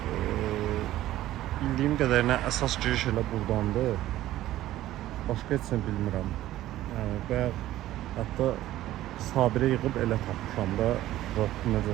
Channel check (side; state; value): left; quieter; 14.5 dB